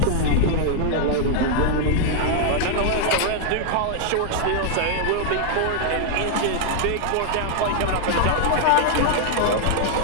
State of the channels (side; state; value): both; different; correlation 0.00